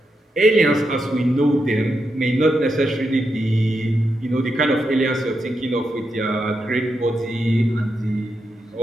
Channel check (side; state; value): both; normal; correlation 0.84